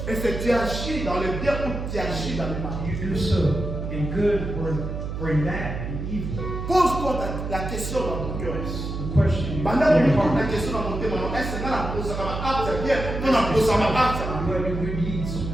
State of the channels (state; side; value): noise; right; hum, 5 dB below the sound